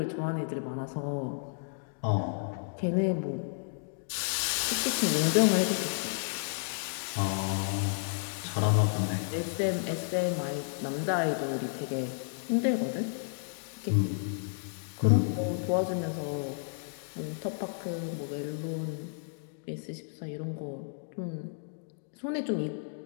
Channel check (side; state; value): right; silent; digital silence